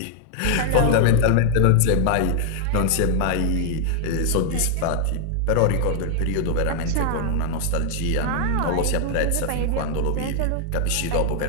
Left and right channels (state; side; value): different; both; correlation 0.00